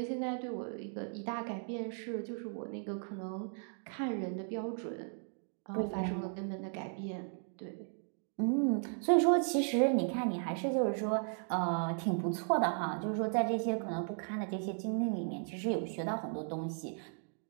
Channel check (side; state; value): left; silent; 54 dB below the other